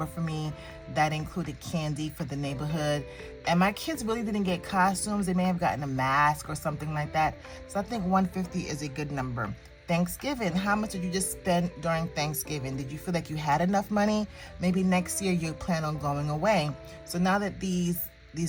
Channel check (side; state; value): both; identical; correlation 1.00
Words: for me. That included candy for the neighborhood. And my kids really didn't get costumes. They may have gotten a mask or something like that. So I think $150 is a good number. Thanksgiving, how much did you just spend during Thanksgiving? Did you feel like you had enough money? Maybe next year you plan on going away. So now that these